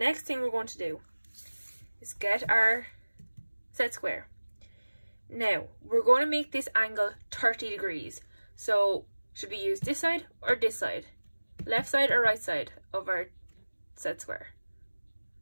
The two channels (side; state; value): both; inverted; correlation -1.00